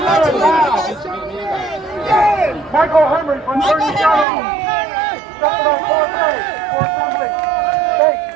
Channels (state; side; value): drops out; left; at 4.2 s